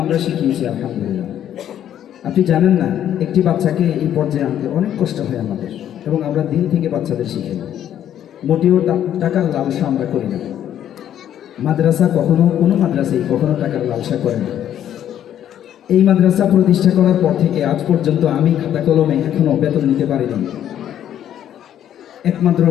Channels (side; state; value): right; quieter; 10.6 dB